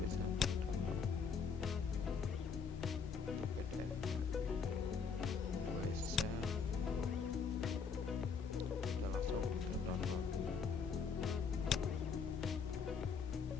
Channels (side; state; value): right; quieter; 5.8 dB